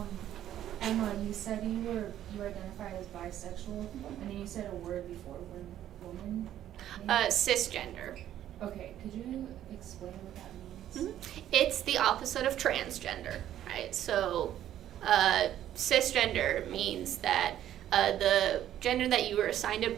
Emma, you said you identified as bisexual, and then you said a word before, woman? Cisgender. Okay, could you explain what that means? Mm-hmm. It's the opposite of transgender, right? So cisgender means that the gender that you were assigned at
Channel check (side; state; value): left; quieter; 11.7 dB